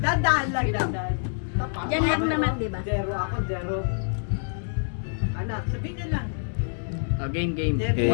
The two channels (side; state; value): right; silent; digital silence